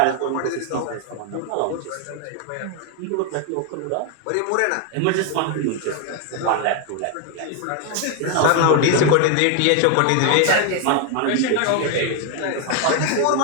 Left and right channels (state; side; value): different; both; correlation 0.00